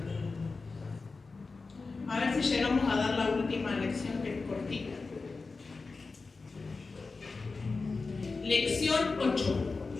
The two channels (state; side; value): quieter; right; 4.1 dB